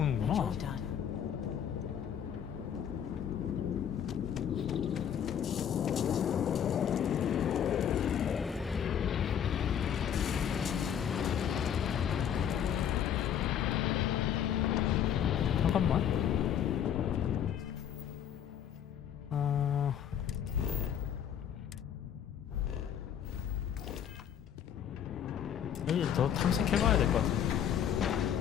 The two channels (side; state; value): right; quieter; 9.1 dB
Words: and you're done. 잠깐만. 여기 더 탐색해봐야 될 것 같은데.